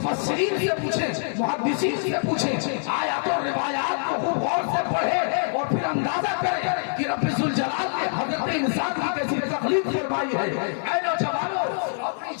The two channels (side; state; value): right; silent; digital silence